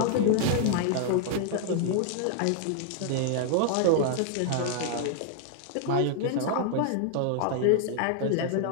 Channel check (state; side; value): different; both; correlation 0.00